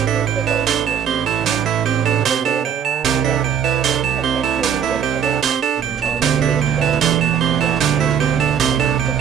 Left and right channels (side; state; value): left; quieter; 8.3 dB